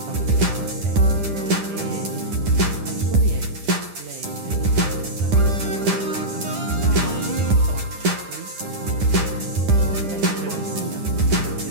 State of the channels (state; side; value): late; left; 10 ms